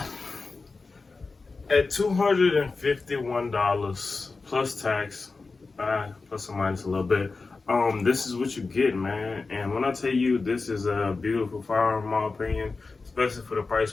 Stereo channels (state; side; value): quieter; right; 4.0 dB